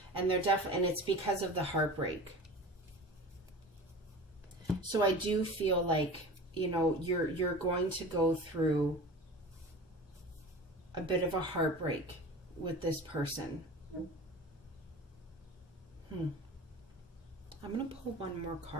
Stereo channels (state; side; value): normal; both; correlation 0.36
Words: And they're and it's because of the heartbreak. So I do feel like, you're going to go through a bit of a heartbreak with this person. I'm going to pull one more